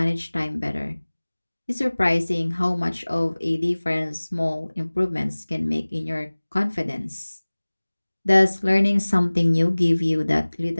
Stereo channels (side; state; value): both; inverted; correlation -1.00